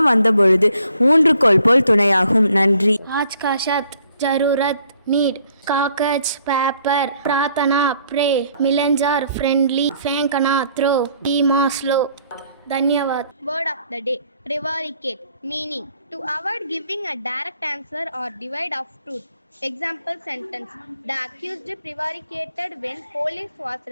வந்தபொழுது ஊன்றுகோல் போல் துணையாகும். நன்றி. आज का शब्द जरूरत नीड, कागज पेपर, प्रार्थना प्रे, मिलेंजर फ्रेंडली, फेंकना थ्रो, धीमा स्लो. धन्यवाद. Word of the day: prevaricate, meaning to avoid giving a direct answer or divide of truth. Example sentence: the accused prevaricated when police was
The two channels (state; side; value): inverted; both; correlation -0.65